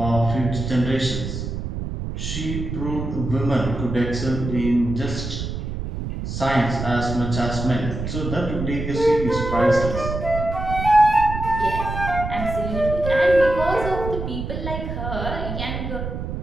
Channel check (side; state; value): right; noise; rumble, 5 dB below the sound